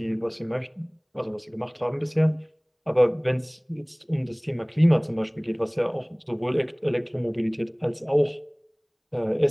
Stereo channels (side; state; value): both; identical; correlation 1.00